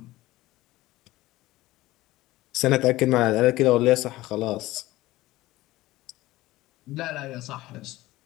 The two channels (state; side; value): quieter; right; 17.7 dB